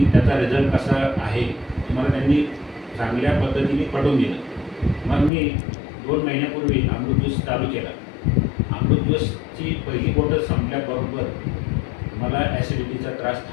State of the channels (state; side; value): drops out; right; at 5.3 s